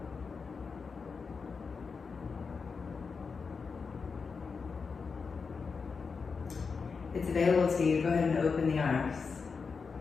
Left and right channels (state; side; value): quieter; right; 5.1 dB